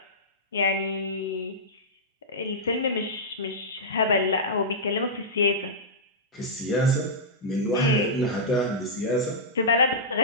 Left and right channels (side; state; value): both; normal; correlation -0.12